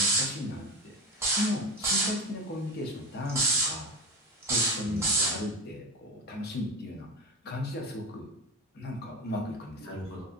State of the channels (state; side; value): normal; both; correlation 0.24